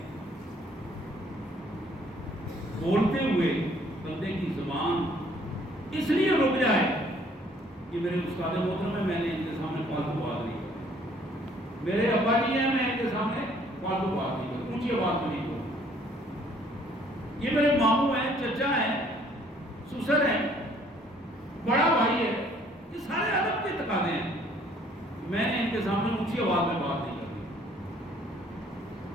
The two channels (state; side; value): normal; both; correlation 0.61